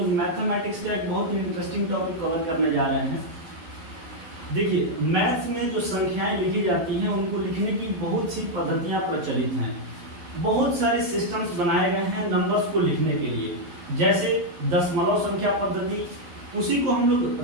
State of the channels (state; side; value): late; left; 12 ms